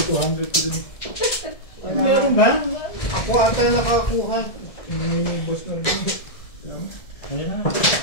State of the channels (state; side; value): late; right; 1.7 ms